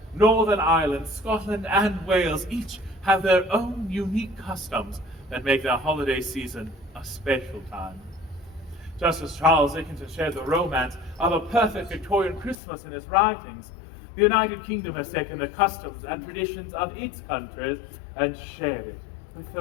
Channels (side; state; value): right; drops out; at 12.6 s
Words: Northern Ireland, Scotland, and Wales each have their own unique customs that make their holiday season a special time. Just as Charles Dickens shared the romance of a perfect Victorian Christmas in his writings, the United Kingdom has taken the customs and traditions of its countries and shared it with